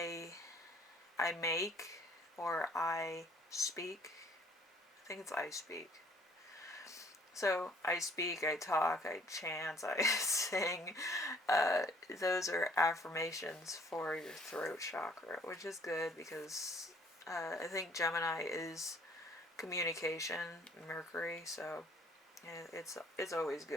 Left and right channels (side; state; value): both; normal; correlation 0.58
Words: make, or I speak. I think it's I speak. So I speak, I talk, I chant, I sing. Those are affirmations for your throat chakra, which is good because I think Gemini is communication, Mercury, so it's always